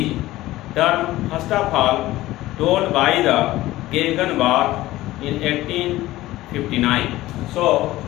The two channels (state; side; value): quieter; right; 16.7 dB